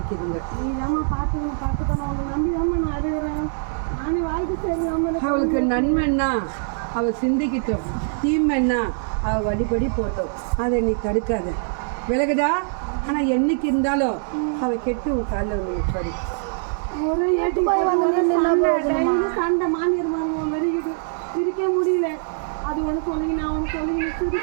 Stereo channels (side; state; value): left; silent; digital silence